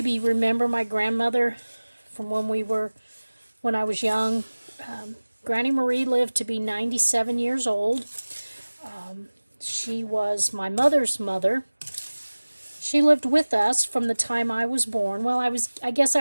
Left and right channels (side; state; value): both; inverted; correlation -1.00